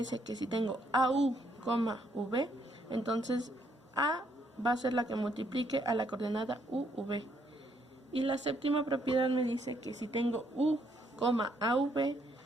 que si tengo AU, V, entonces A va a ser la que multiplique a la coordenada UV. Y la séptima propiedad me dice que si tengo U, AV,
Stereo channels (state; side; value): normal; both; correlation 0.71